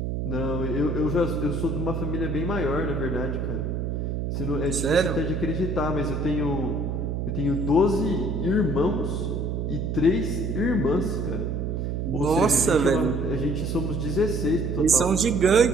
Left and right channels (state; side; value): noise; right; hum, 2 dB below the sound